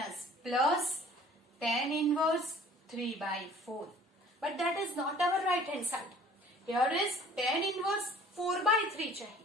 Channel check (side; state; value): both; normal; correlation 0.51